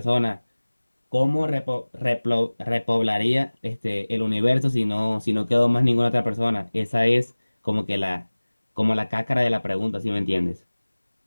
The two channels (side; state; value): both; inverted; correlation -1.00